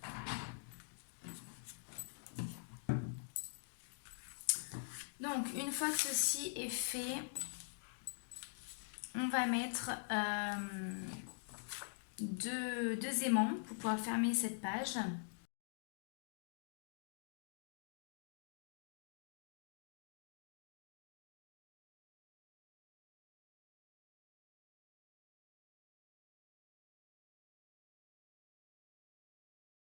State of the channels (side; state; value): right; silent; digital silence